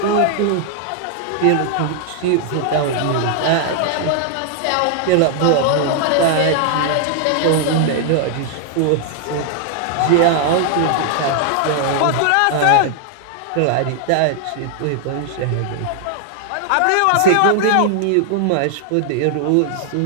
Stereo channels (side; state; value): both; different; correlation 0.00